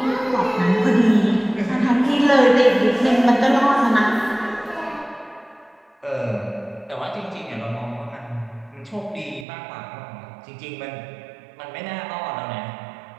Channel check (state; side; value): drops out; left; at 9.5 s